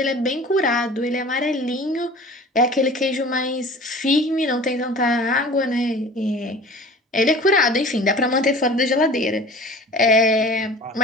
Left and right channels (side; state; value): both; normal; correlation 0.42